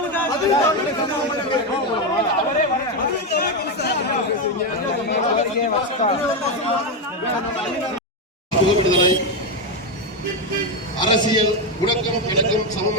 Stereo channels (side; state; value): both; normal; correlation 0.09